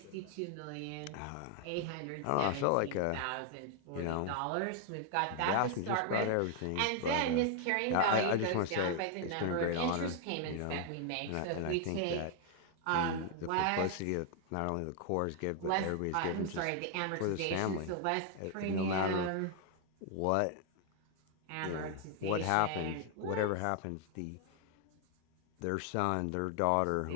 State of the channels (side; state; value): both; different; correlation 0.00